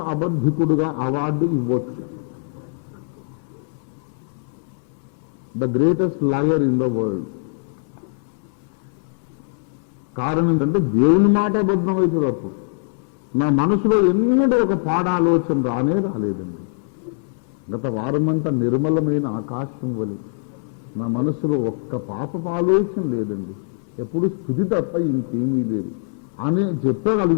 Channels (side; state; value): right; silent; 62 dB below the other